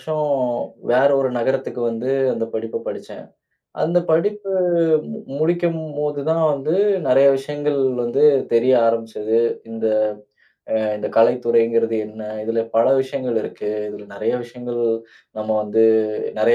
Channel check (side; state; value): both; identical; correlation 1.00